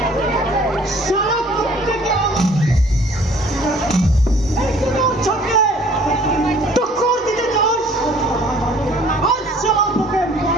সারা প্রত্যেকে চোখে টক্কর দিতে চাস। আজ সারা তোকে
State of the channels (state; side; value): normal; both; correlation 0.54